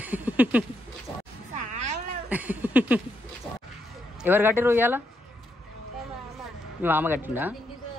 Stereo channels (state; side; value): normal; both; correlation 0.79